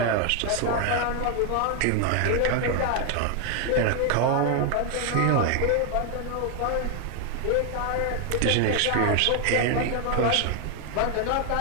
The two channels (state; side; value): different; both; correlation 0.01